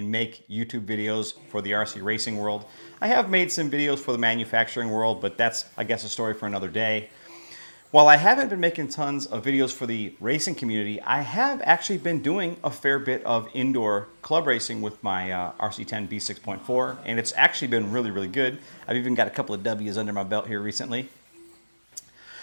make YouTube videos for the RC racing world. I have made some videos for the manufacturing world, but that's, I guess, a story for another day. While I haven't been making tons of videos for the racing community, I have actually been doing a fair bit of indoor club racing with my RC10 B6.4, and it's actually been really, really good. I've even got a couple of W's under my belt here recently.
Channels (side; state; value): both; inverted; correlation -1.00